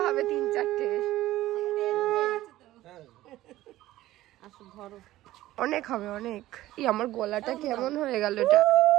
হবে 3-4টে। অনেক হবে অনেক। আমার গলাটা কেমন হয়ে গেল এটা।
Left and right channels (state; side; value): quieter; left; 15.6 dB